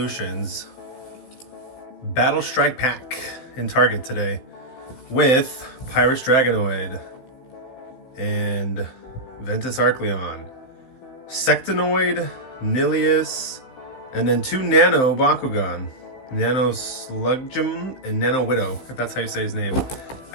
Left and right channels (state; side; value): late; right; 15 ms